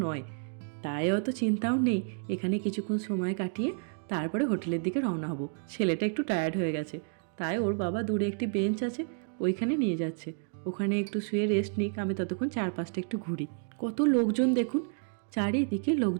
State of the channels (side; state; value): left; silent; 56 dB below the other